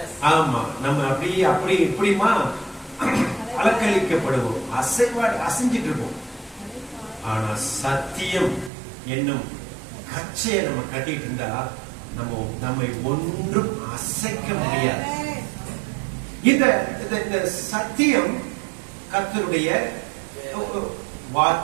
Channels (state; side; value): drops out; left; at 8.7 s